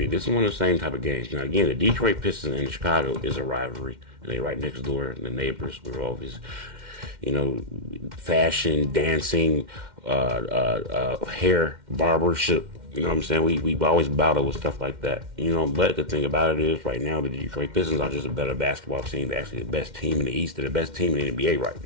This is one of the same type of games. Now, again, the Detroit Pistons and Chicago is a rivalry, and they're right next door, and the neighbors. We're always fashion, dancing, hair, barbership. You know what I'm saying? We always battle with stuff like that. But the thing about it is, right now, the Detroit Pistons are just a better basketball team. They're actually the best team in the East. They're the best team in the NBA right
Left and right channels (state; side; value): late; left; 2.1 ms